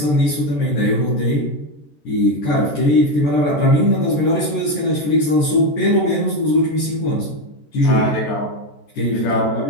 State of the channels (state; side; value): late; right; 14 ms